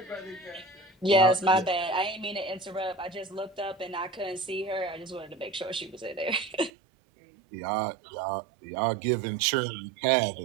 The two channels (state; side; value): drops out; left; at 6.7 s